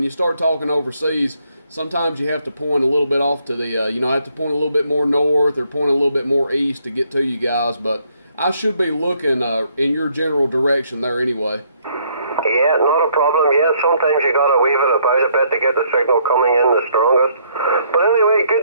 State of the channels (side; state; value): both; inverted; correlation -0.69